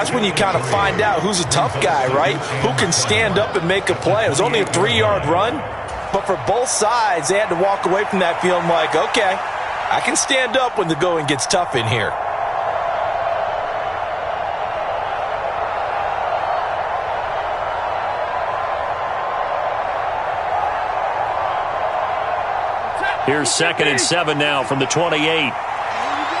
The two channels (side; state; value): both; identical; correlation 1.00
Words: when you kind of find out who's a tough guy, right? Who can stand up and make a play. It was only a 3-yard run. But for both sides, they had to walk away from that feeling like, okay, I can stand up when the going gets tough in here. Here's 2nd and 7 now from the 28.